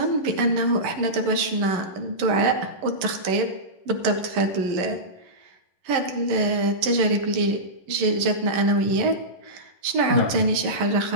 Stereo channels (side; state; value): left; late; 11 ms